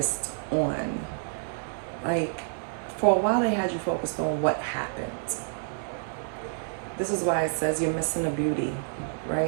on, like, for a while they had you focused on what happened. This is why it says you're missing the beauty,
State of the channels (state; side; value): silent; left; 59 dB below the other